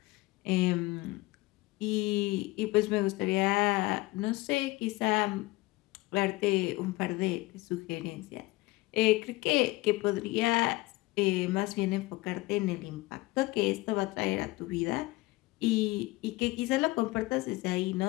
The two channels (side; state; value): right; quieter; 21.0 dB